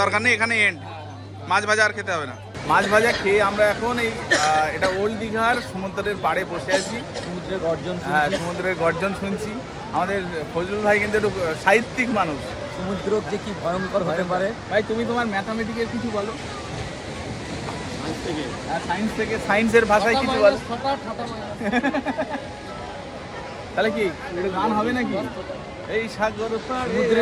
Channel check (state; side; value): identical; both; correlation 1.00